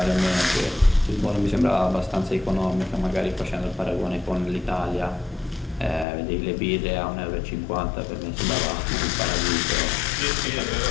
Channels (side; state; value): right; drops out; at 6.1 s